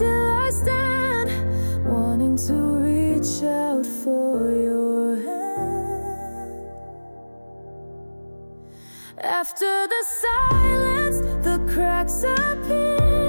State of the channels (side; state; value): both; inverted; correlation -1.00